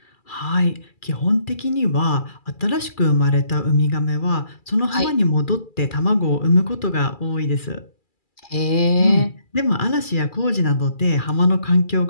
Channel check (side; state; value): right; late; 2.4 ms